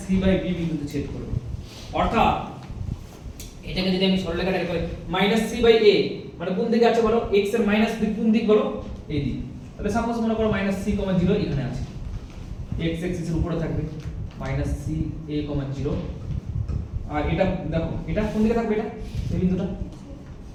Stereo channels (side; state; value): both; identical; correlation 1.00